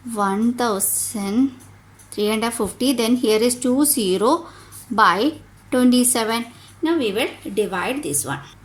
1350. Then here is 2 0 by 27. Now we will divide this one.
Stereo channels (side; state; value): both; identical; correlation 1.00